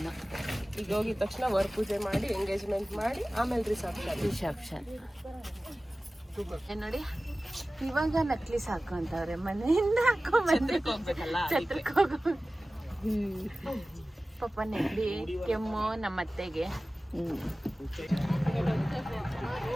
ಈಗ ಹೋಗಿದ ತಕ್ಷಣ ವರ್ ಪೂಜೆ ಮಾಡಿ ಎಂಗೇಜ್ಮೆಂಟ್ ಮಾಡಿ ಆಮೇಲೆ ರಿಸೆಪ್ಷನ್. ನೋಡಿ, ಇವಾಗ ನಕ್ಲಿಸ್ ಹಾಕೊಂತವ್ರೆ, ಮನೆಯಿಂದ ಹಾಕೊಂಡ್ಬಂದ್ರೆ ಛತ್ರಕ್ಕೆ ಹೋಗೋ ಪಾಪ ನೆಗಡಿ ಕೆಮ್ಮು ನಮ್ಮ ಅತ್ತೆಗೆ.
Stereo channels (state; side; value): normal; both; correlation 0.97